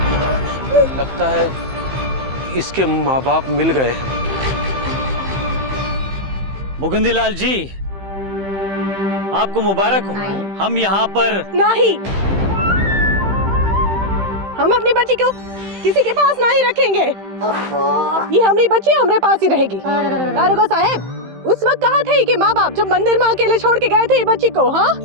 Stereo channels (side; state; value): left; late; 15 ms